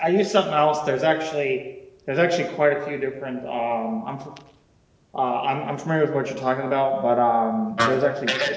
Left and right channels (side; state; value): both; identical; correlation 1.00